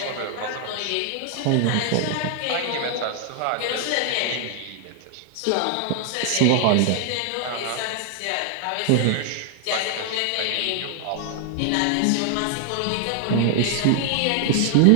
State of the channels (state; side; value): different; both; correlation 0.00